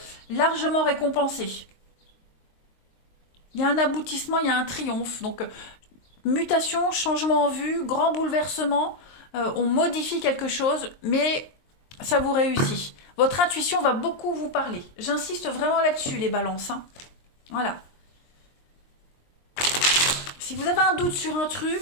largement récompensé. Il y a un aboutissement, il y a un triomphe. Donc, mutation, changement en vue, grand bouleversement. On modifie quelque chose, mais ça vous réussit. Votre intuition va beaucoup vous parler. J'insiste vraiment là-dessus, les balances. Hein. Voilà. Si vous avez un doute sur un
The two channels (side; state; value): right; late; 23 ms